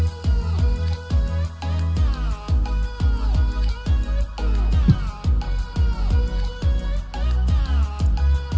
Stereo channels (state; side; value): identical; both; correlation 1.00